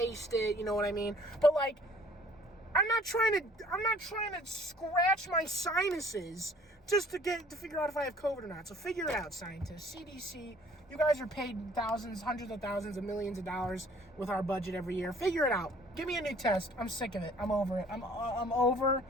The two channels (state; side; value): normal; both; correlation 0.55